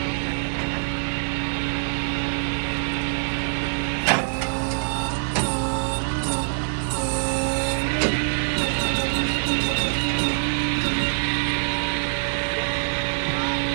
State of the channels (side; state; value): left; silent; digital silence